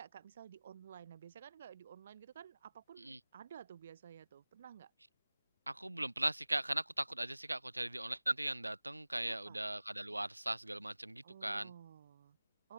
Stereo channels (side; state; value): both; inverted; correlation -0.99